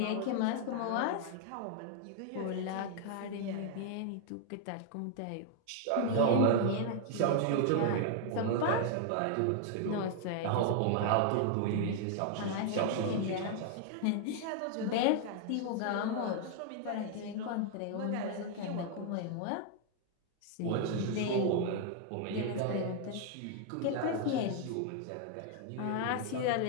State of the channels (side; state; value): both; different; correlation 0.00